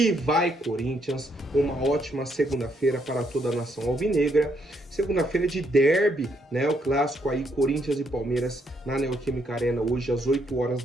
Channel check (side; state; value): both; normal; correlation 0.74